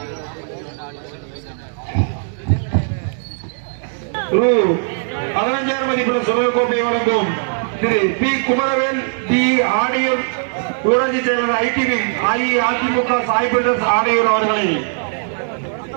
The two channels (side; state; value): left; silent; 67 dB below the other